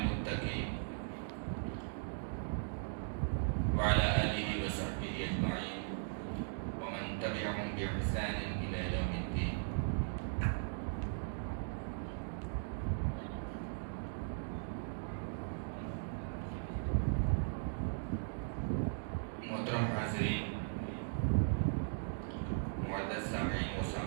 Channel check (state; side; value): silent; left; digital silence